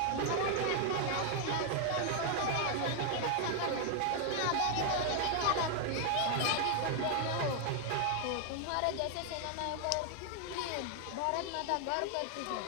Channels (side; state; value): both; different; correlation 0.00